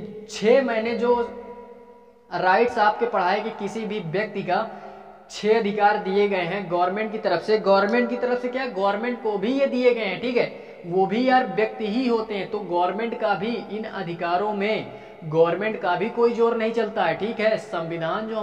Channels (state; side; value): identical; both; correlation 1.00